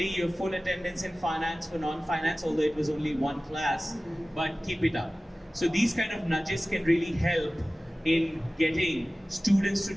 your full attendance in finance for non-finance, although it was only one class, but keep it up. So these kind of nudges can really help in getting students to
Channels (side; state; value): both; normal; correlation 0.97